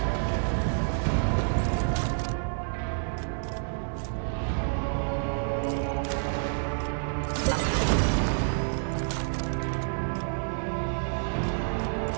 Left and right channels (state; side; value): silent; left; digital silence